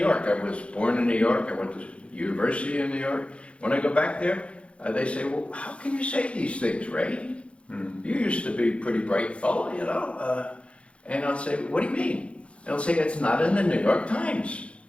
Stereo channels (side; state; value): right; late; 0.060 ms